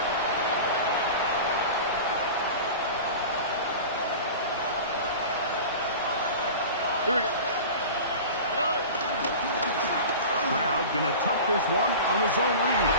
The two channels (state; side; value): inverted; both; correlation -0.35